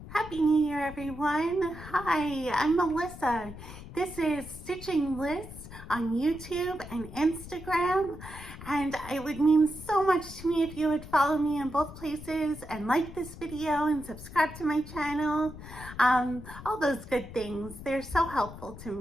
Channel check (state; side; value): noise; left; rumble, 14 dB below the sound